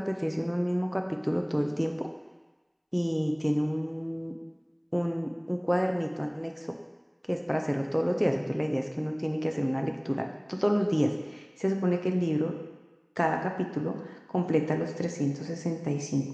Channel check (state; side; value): identical; both; correlation 1.00